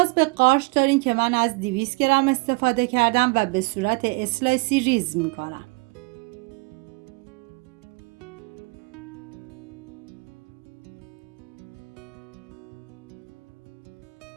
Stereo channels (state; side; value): quieter; left; 28.6 dB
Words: به قارچ دارین که من از 200 گرم استفاده کردم و به صورت اسلایسی ریز میکنم.